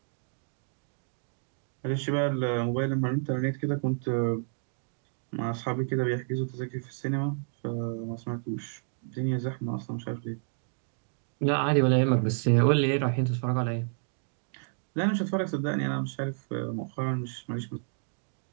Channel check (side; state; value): left; silent; digital silence